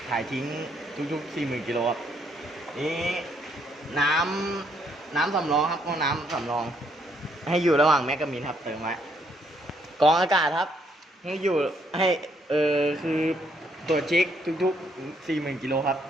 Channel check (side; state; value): both; normal; correlation 0.71